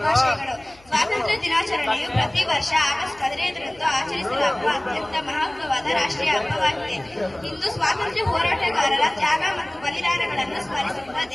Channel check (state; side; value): noise; left; hum, 28 dB below the sound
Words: ಶುಭಾಶಯಗಳು. ಸ್ವಾತಂತ್ರ್ಯ ದಿನಾಚರಣೆಯು ಪ್ರತಿ ವರ್ಷ ಆಗಸ್ಟ್ 15ರಂದು ಆಚರಿಸಲಾಗುವ ಅತ್ಯಂತ ಮಹತ್ವವಾದ ರಾಷ್ಟ್ರೀಯ ಹಬ್ಬವಾಗಿದೆ. ಇಂದು ಸ್ವಾತಂತ್ರ್ಯ ಹೋರಾಟಗಾರರ ತ್ಯಾಗ ಮತ್ತು ಬಲಿದಾನಗಳನ್ನು ಸ್ಮರಿಸುತ್ತಾ